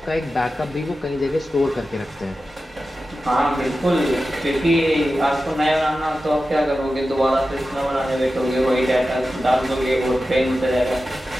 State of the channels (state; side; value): normal; both; correlation 0.93